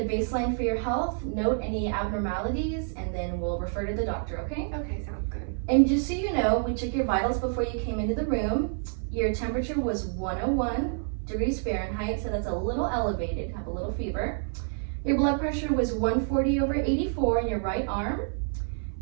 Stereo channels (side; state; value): left; silent; 59 dB below the other